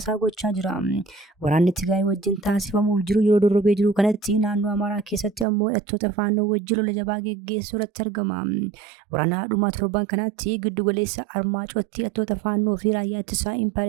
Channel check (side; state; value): left; drops out; at 5.5 s